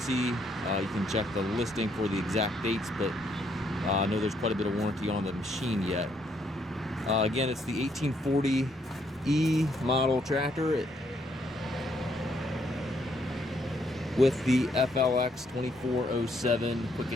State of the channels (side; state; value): both; normal; correlation 0.72